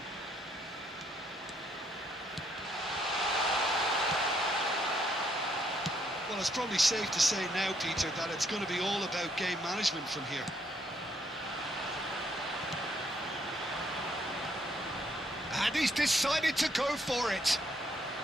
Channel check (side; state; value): both; normal; correlation 0.71